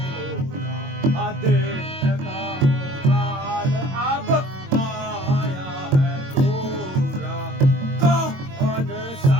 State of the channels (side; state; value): left; late; 22 ms